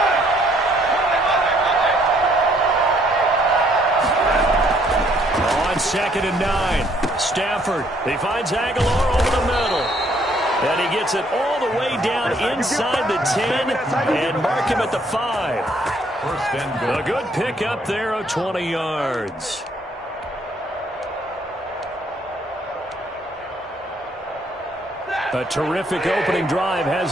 On 2nd and 9, Stafford. He finds Aguilar over the middle. And he gets it all the way down inside the 10 and mark him at the 5. A good pickup there of 20 yards. A terrific opening drive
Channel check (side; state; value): both; normal; correlation 0.66